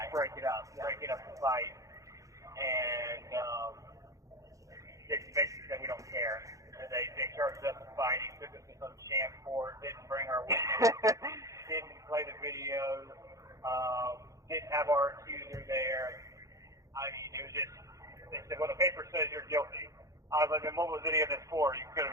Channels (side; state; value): left; late; 0.16 ms